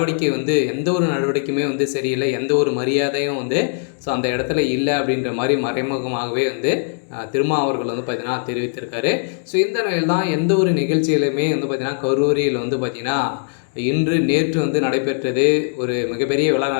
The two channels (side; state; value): right; silent; 66 dB below the other